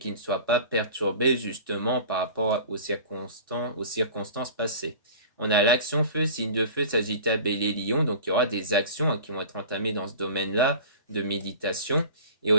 ne soient pas perturbées justement par rapport aux circonstances passées. On a l'action feu, signe de feu, Sagittaire, Bélier, Lion, donc il y aura des actions qui vont être entamées dans ce domaine-là de méditation, et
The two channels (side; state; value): both; inverted; correlation -0.39